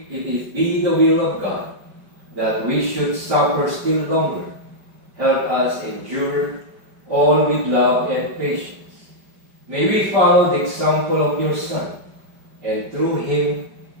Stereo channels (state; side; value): late; left; 5.1 ms